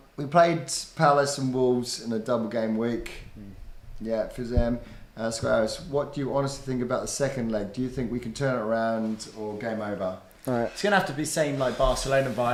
We played Palace and Wolves in a double game week. Yeah, for them. Squares, what do you honestly think about the second leg? Do you think we can turn it around or game over? Right. It's going to have to be same like Barcelona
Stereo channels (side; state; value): both; identical; correlation 1.00